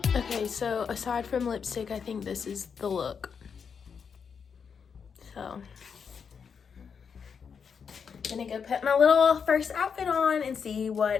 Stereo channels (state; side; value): quieter; right; 6.4 dB